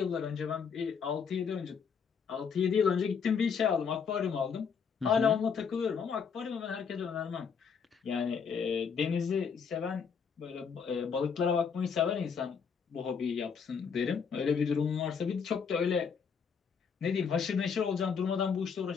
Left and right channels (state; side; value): quieter; right; 6.3 dB